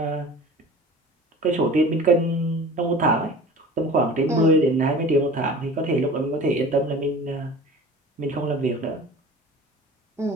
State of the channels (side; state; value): both; normal; correlation 0.40